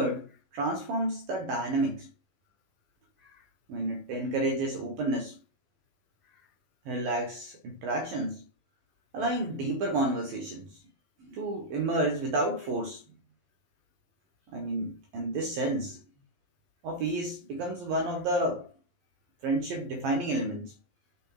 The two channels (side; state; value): left; late; 11 ms